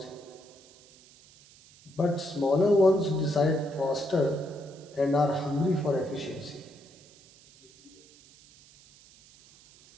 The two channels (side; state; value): right; noise; hiss, 25 dB below the sound